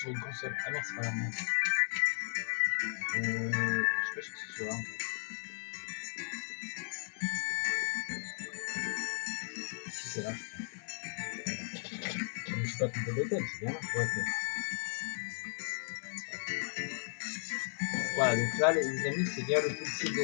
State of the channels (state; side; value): silent; right; digital silence